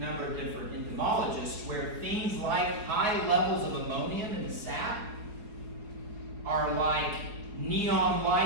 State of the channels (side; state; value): left; late; 4.7 ms